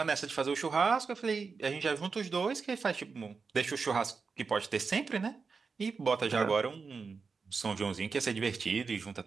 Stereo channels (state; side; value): quieter; left; 4.9 dB